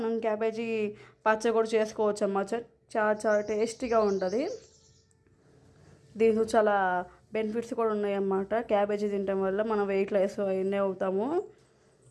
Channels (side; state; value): both; identical; correlation 1.00